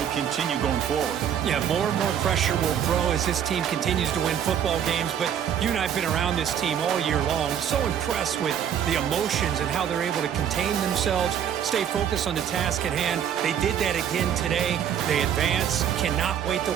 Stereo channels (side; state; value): left; quieter; 9.1 dB